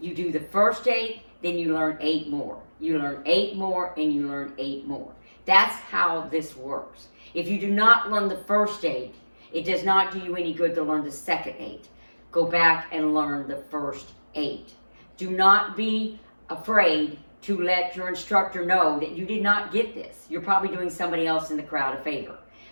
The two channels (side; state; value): both; inverted; correlation -1.00